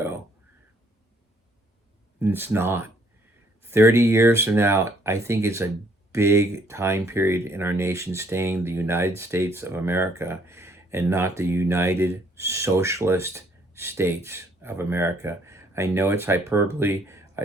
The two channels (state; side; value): normal; both; correlation 0.65